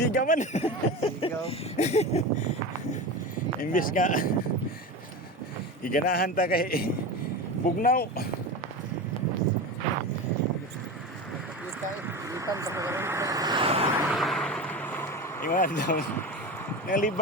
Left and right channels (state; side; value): normal; both; correlation 0.26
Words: man. Sigaw. Imbis nga iganahan ta kay bugnaw. Pista ipan sa karon. Ingon daw.